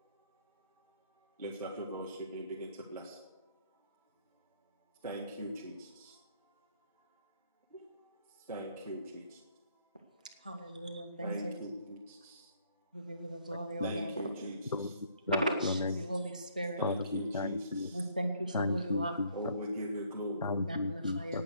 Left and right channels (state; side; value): inverted; both; correlation -0.65